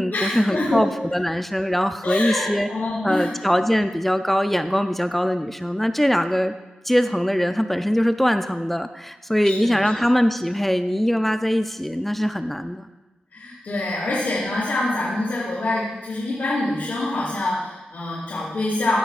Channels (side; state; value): both; normal; correlation 0.95